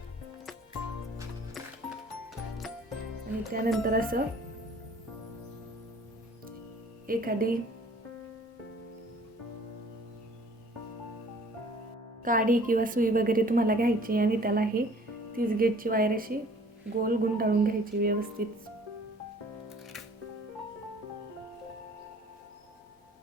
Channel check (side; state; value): both; normal; correlation 0.53